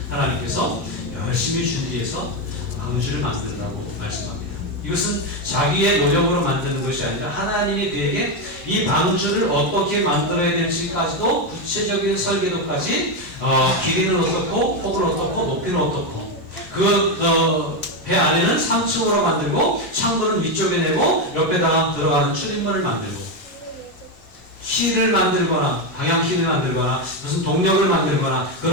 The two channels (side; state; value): both; normal; correlation 0.09